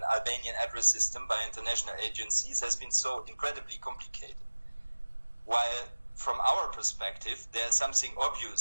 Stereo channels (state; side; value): inverted; both; correlation -1.00